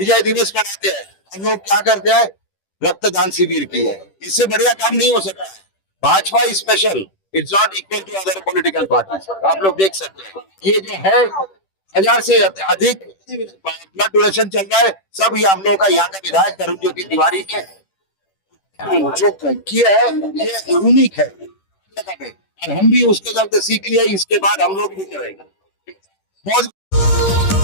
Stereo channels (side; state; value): right; late; 10 ms